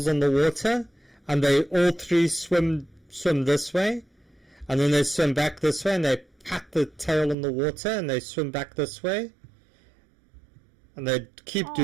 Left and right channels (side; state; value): left; drops out; at 7.4 s